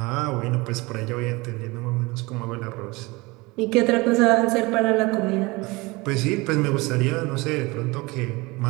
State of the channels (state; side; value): quieter; left; 23.7 dB